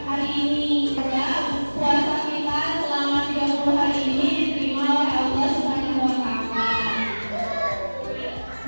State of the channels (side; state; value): both; inverted; correlation -1.00